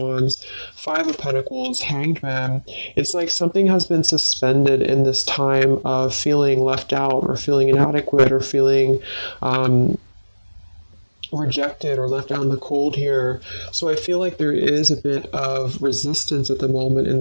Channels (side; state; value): both; inverted; correlation -1.00